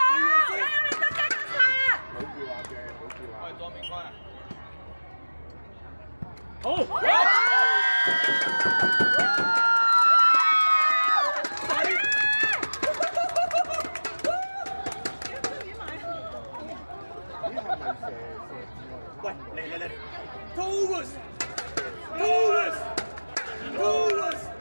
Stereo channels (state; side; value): inverted; both; correlation -1.00